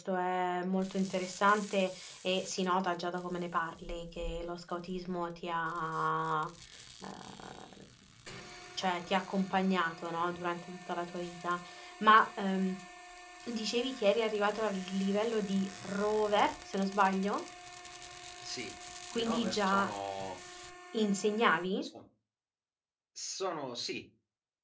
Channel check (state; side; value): identical; both; correlation 1.00